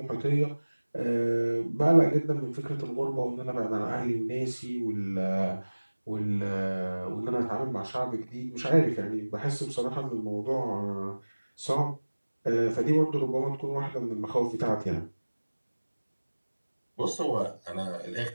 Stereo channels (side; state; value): both; inverted; correlation -1.00